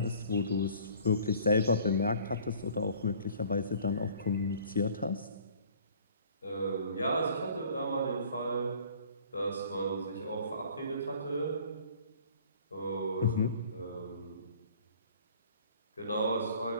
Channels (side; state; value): both; inverted; correlation -0.52